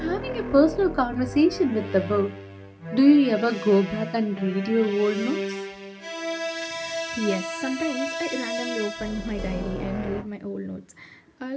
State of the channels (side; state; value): both; identical; correlation 1.00